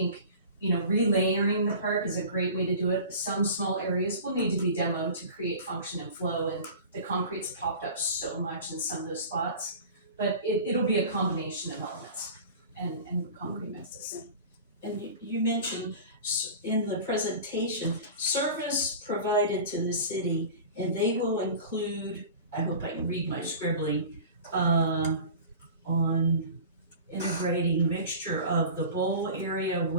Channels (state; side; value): inverted; both; correlation -0.38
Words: you know, relayering the park is a great way to do it. Some small areas will need to be demoed to create function and flow, and the concrete's popped up so much in some of those spots, but it'll be a combination of elements and concrete mixes. And you mentioned in the presentation, service provided to the city, and they will include, I hope I can read my scribbling, on integrating mixture of the bowl area